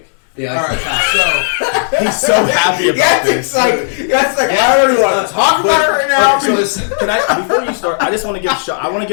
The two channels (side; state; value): right; silent; 65 dB below the other